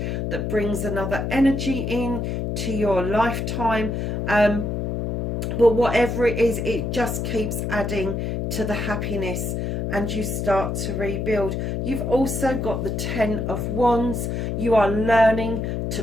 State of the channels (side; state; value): left; noise; hum, 2 dB below the sound